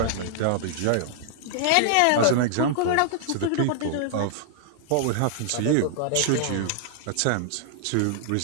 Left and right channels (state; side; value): different; both; correlation -0.01